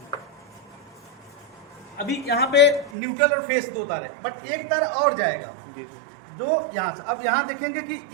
अभी यहाँ पे न्यूट्रल और फेस 2 तार है, बट एक तार और जाएगा जो यहाँ से, अब यहाँ देखेंगे कि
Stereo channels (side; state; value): left; drops out; at 2.9 s